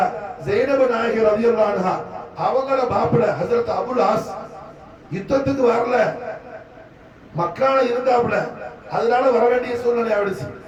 ஸைனப் நாயகி ரலியல்லாஹு அன்ஹா அவங்கள மாப்பிள்ளை ஹஜ்ரத் அபுல் ஆஸ் யுத்தத்துக்கு வரல, மக்கால இருந்தாப்புல, அதனால வர வேண்டிய சூழ்நிலை ஆயிடுச்சு.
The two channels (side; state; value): both; identical; correlation 1.00